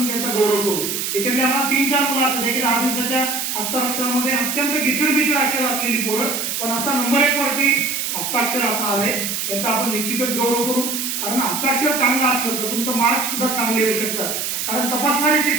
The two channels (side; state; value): right; noise; hiss, 2 dB below the sound